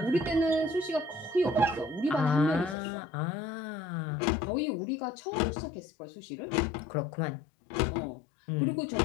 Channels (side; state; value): right; drops out; at 2.8 s